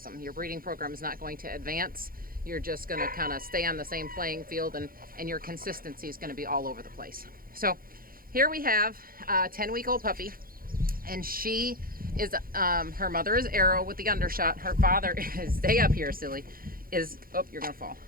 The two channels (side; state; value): left; late; 0.42 ms